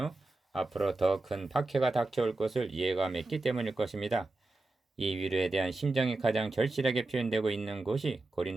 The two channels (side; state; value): left; quieter; 3.0 dB